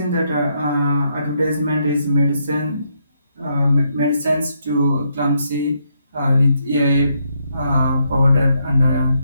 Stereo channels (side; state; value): both; inverted; correlation -0.76